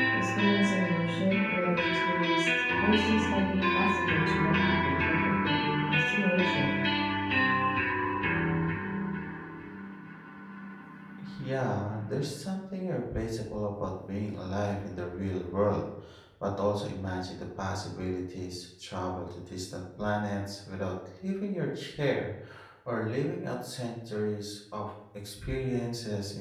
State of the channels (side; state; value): both; identical; correlation 1.00